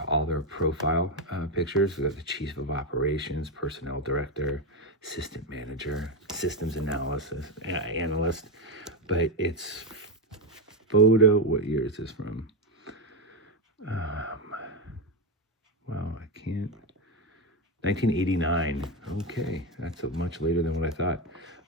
all their profile pictures. We got the Chief of Operations, Personnel Director, Assistant Manager, Systems Analyst. But it's photo, what year is this from? Well, I can't. 1989. Okay, that's much later than what I thought.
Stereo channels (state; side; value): normal; both; correlation 0.09